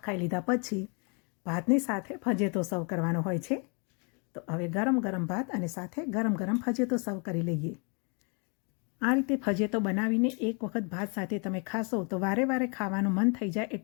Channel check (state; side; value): quieter; right; 35.1 dB